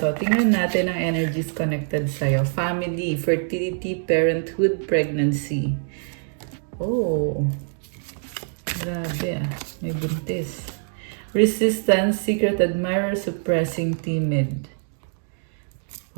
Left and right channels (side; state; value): left; silent; digital silence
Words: Tingnan natin ang energies connected sa'yo. Family, fertility, parenthood, pregnancy. Oh, grabe ah. May buntis. Resistance, secret admirer, suppressing, timid.